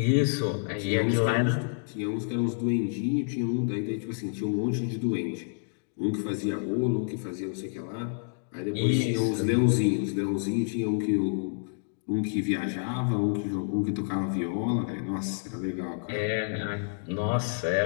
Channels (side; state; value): right; silent; digital silence